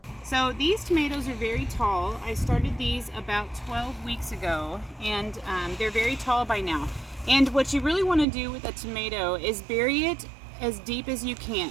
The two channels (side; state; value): left; drops out; at 8.2 s